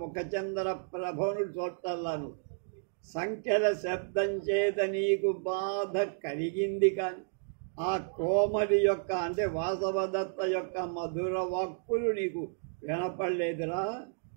ముఖచంద్ర ప్రభను చూడటల్లాను. సంఖ్యల శబ్దం చేత నీకు బాధ కలిగింది, కానీ ఆ కోమలి యొక్క అంటే వాసవదత్త యొక్క మధుర వాక్కులు నీకు వినపడలేదురా.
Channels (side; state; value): left; silent; digital silence